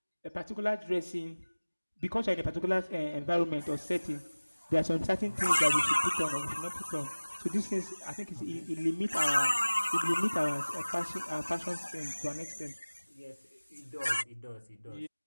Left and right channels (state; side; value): inverted; both; correlation -1.00